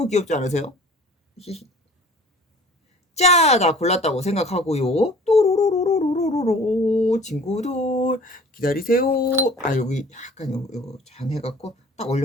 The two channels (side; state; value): both; normal; correlation 0.47